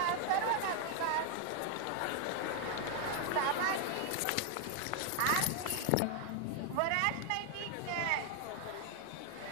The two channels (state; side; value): different; both; correlation 0.00